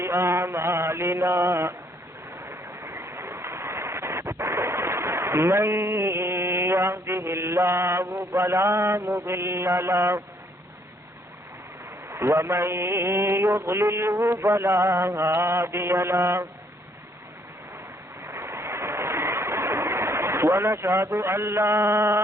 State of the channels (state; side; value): normal; both; correlation 0.67